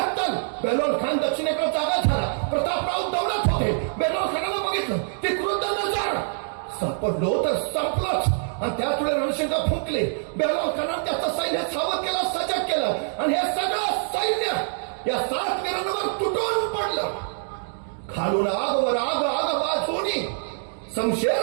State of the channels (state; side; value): silent; left; digital silence